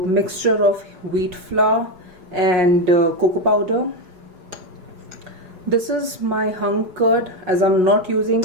mixture of wheat flour and cocoa powder. This is my hung curd, as I'm not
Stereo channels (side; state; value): left; late; 5.5 ms